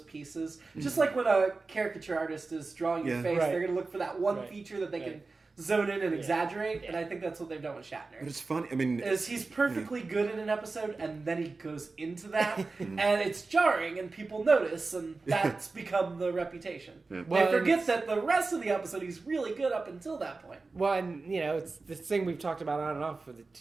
pieces. Just like when a caricature artist is drawing your face, they're going to look for that one feature that they can zone in and exaggerate, and I think that's what they've done with Shatner. But it's funny. I mean, he's perfectly good in an episode, and then he goes into that, and it's jarring, and people notice, and that's become the reputation. Yeah. Well, they forget that the rest of the episode he's really good up until that point. Well, and it's this thing we've talked about on and off for the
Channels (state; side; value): quieter; left; 3.8 dB